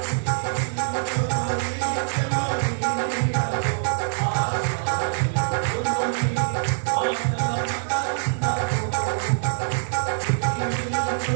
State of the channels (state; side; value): silent; left; digital silence